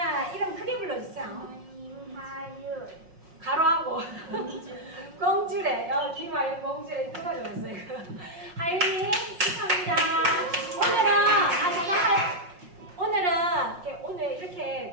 이름 크게 불러주세요. 김하윤 가로하고 공주래. 김하윤 공주래. 누가 좋았어요? 하윤이 축하합니다. 오늘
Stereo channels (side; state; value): left; late; 5.5 ms